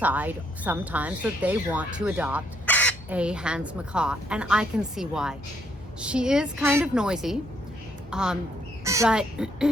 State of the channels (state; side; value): normal; both; correlation 0.71